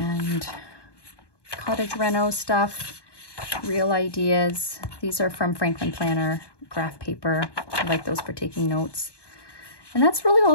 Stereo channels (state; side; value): late; right; 1.2 ms